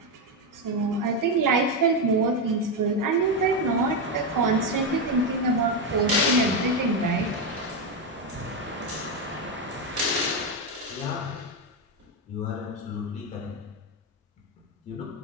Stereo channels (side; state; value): both; normal; correlation 0.08